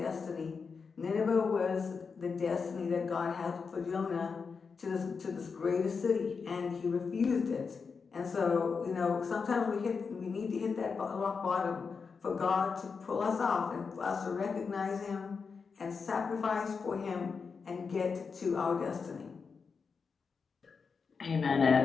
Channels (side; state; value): right; quieter; 5.3 dB